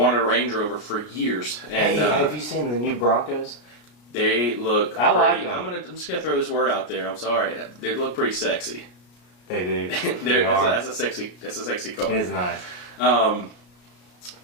a Range Rover for years. And hey, have you seen the new Broncos? They look. I like pretty, them. I'm just gonna throw this word out there. I'm sorry. They look pretty sexy. They do. That's a sexy car. It is nice.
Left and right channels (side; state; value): right; late; 33 ms